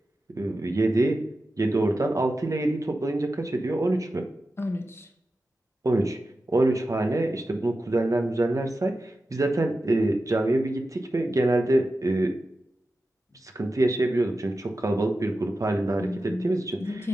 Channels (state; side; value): normal; both; correlation 0.92